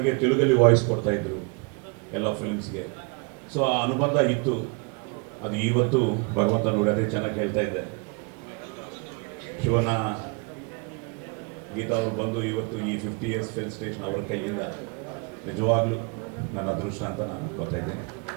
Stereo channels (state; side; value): quieter; left; 32.5 dB